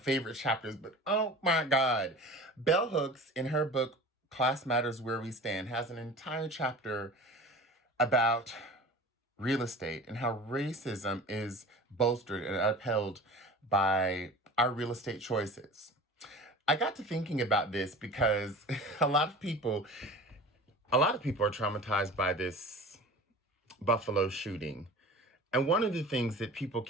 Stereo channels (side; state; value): both; normal; correlation 0.38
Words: chapters, but oh my God. Bell Hooks, in her book, Class Matters Where We Stand, has an entire chapter about real estate and how racism is bolstered and upheld by our real estate choices. I got to thinking about this because a lot of people, a lot of people are traumatized by this Buffalo shooting. And one of the things that people